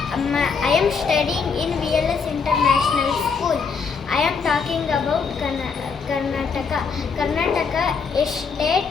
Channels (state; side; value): quieter; right; 5.5 dB